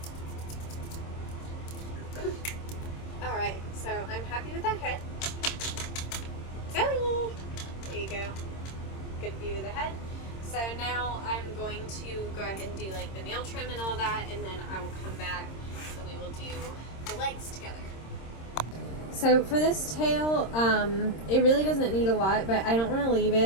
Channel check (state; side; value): late; right; 26 ms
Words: Alright, so I'm happy with that head. Zoe! There you go. Good view of the head. So now I'm going to go ahead and do like the nail trim and all that, and then I will come back and we will do the legs together. So for this tail, it really doesn't need a lot, but I don't want to leave